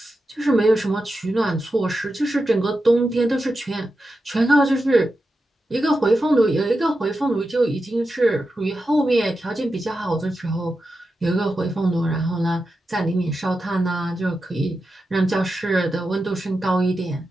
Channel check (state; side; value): normal; both; correlation 0.90